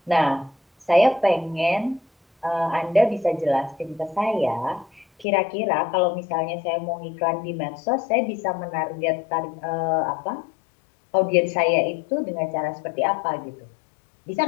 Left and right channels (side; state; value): right; drops out; at 5.2 s